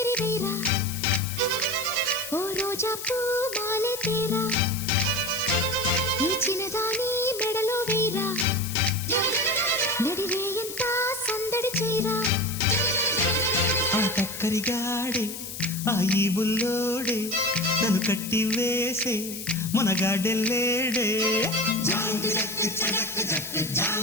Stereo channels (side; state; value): left; noise; hiss, 9 dB below the sound